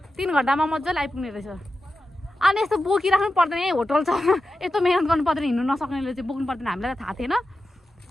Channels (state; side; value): normal; both; correlation 0.92